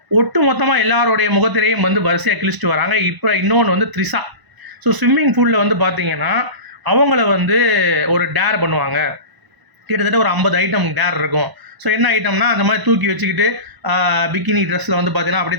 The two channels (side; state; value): left; late; 1.0 ms